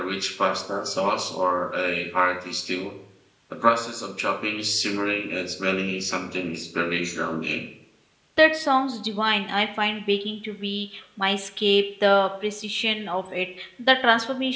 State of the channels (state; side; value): identical; both; correlation 1.00